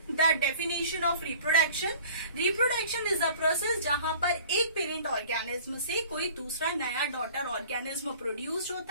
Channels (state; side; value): inverted; both; correlation -0.47